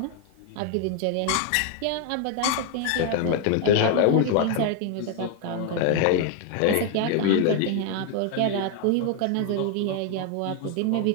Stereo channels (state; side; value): different; both; correlation 0.00